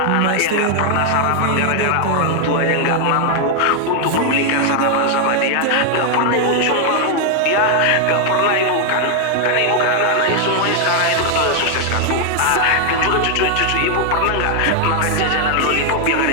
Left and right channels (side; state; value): both; different; correlation 0.00